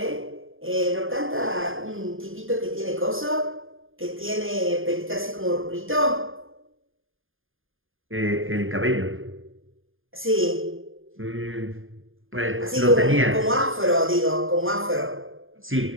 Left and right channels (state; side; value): late; left; 0.59 ms